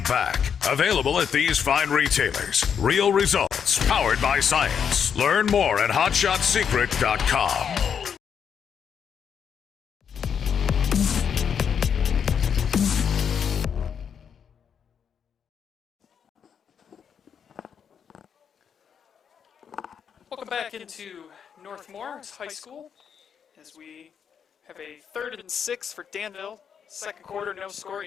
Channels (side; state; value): right; quieter; 7.5 dB